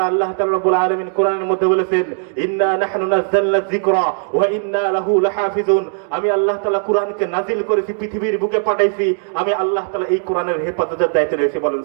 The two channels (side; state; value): left; silent; 56 dB below the other